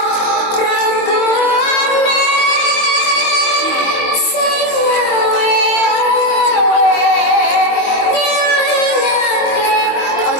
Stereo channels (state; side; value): late; right; 22 ms